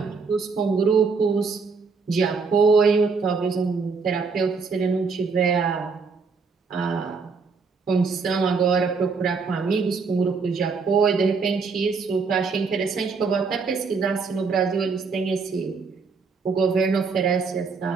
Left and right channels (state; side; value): quieter; left; 4.9 dB